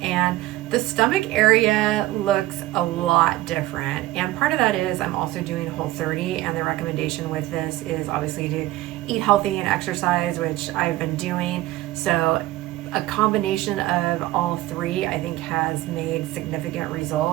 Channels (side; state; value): left; quieter; 16.9 dB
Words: the stomach area looks a lot different. And part of that is I'm also doing Whole30, and the recommendation with this is obviously to eat healthy and exercise, which I've been doing. So a combination of all 3, I think, has made significant